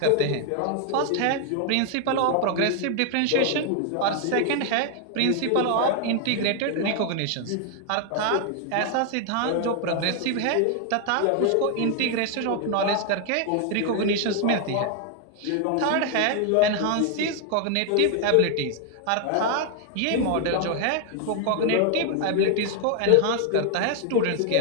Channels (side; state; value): both; different; correlation 0.00